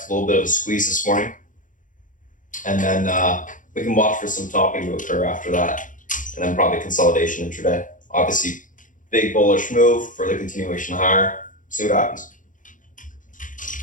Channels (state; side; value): late; right; 0.38 ms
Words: a little bit of a squeeze this morning. And then we can watch for some topping to occur after that. And then probably consolidation intraday. Obviously, big bullish move for the continuation higher. See what happens.